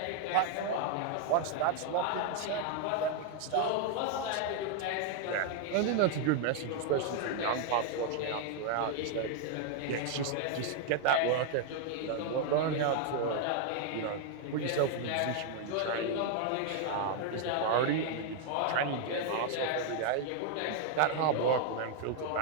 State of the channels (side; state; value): both; different; correlation 0.00